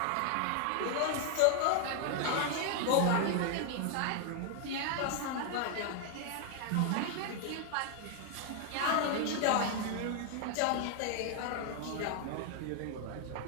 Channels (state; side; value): different; both; correlation 0.00